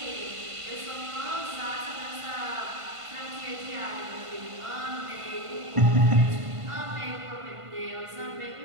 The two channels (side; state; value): left; late; 1.5 ms